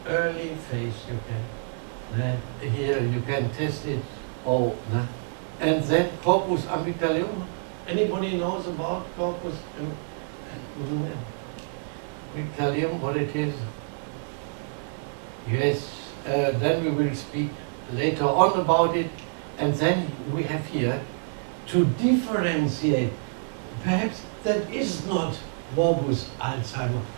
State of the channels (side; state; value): left; silent; digital silence